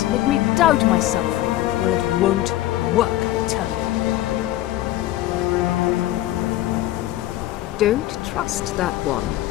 make me doubt myself. Well, it won't work, I tell you. Don't trust that one.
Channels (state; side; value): quieter; right; 15.0 dB